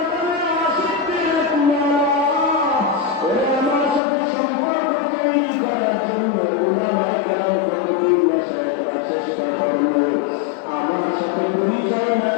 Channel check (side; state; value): right; drops out; at 4.0 s